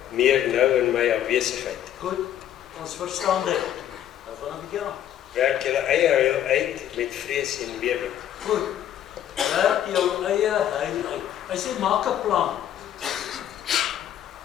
meer nou in my afwesigheid. Goed, ons verstaan dit. Nou gaan 'n bietjie aan. Werk julle eie heil uit met vrees en bewering. Goed, werk jou eie heil uit. Hy sê, maak 'n plan.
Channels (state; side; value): quieter; right; 10.9 dB